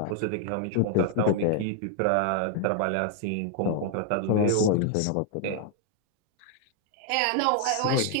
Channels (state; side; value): different; both; correlation 0.00